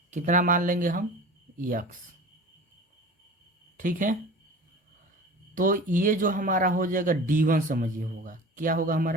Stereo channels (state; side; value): normal; both; correlation 0.38